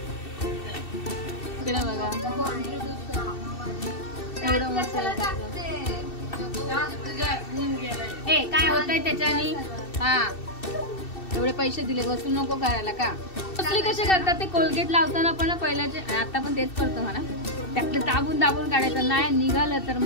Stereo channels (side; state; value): right; late; 2.7 ms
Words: बघा एवढं मस्त. ए काय होतंय त्याच्यानी. हा एवढे पैसे दिले वसूल नको करायला का. कसली कसे करतात ते. कोलगेट लावताना पण पहिल्याचे आता पण तेच करतो म्हणा. त्यातलं दाबून दाबून काढायचं नाही निघालं तर